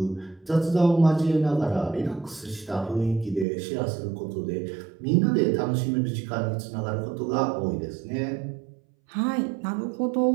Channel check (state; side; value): drops out; left; at 3.5 s